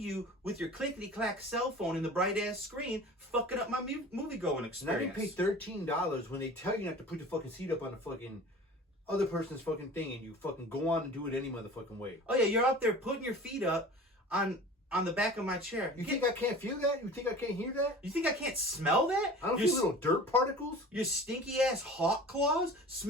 with your clickety-clack cell phone in the bright-ass screen fucking up my movie-going experience. And I didn't pay $13 when they tell you not to put your fucking seat up on the fucking other person's fucking thing, and you fucking go on and do it any motherfucking way. Oh yeah, you're out there putting your feet up on the back of my chair. You think I can't feel that? You think I can't hear that? You think I can't smell that? I don't feel little dirt particles. Your stinky ass hawk claws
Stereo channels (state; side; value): normal; both; correlation 0.40